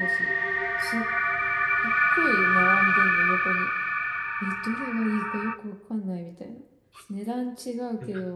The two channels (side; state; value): both; identical; correlation 1.00